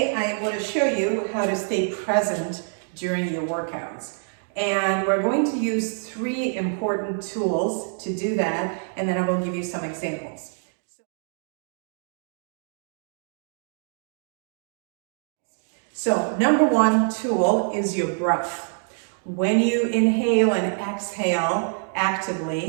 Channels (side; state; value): left; silent; digital silence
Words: I want to show you how to stay present during your workouts. And we're going to use 3 important tools to do that, and then I will give you some examples. So number 1 tool is your breath. When you inhale and exhale